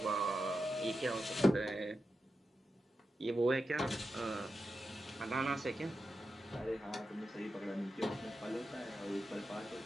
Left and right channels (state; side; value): normal; both; correlation 0.90